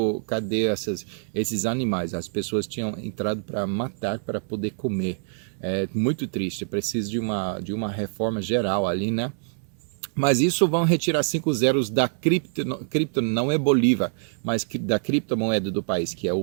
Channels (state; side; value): silent; left; 62 dB below the other